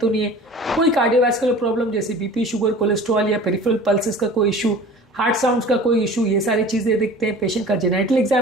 नहीं है, कोई कार्डियोवैस्कुलर प्रॉब्लम जैसे बीपी, शुगर, कोलेस्ट्रॉल या पेरिफेरल पल्सेस का कोई इशू, हार्ट साउंड्स का कोई इशू, ये सारी चीज़ें देखते हैं। पेशेंट का जेनेटल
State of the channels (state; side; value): normal; both; correlation 0.42